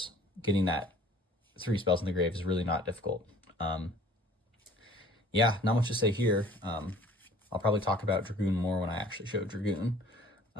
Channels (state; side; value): normal; both; correlation 0.51